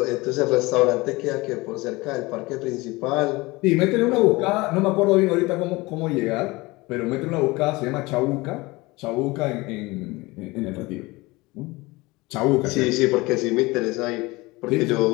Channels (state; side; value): quieter; right; 22.4 dB